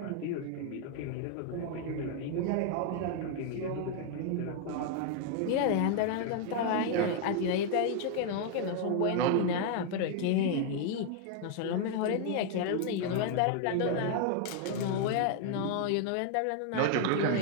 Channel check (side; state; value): both; different; correlation 0.00